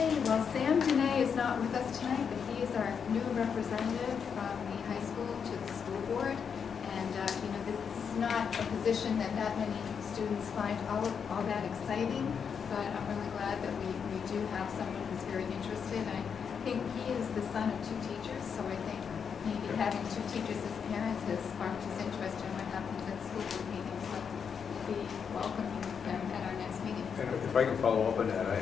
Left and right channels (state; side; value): quieter; right; 6.8 dB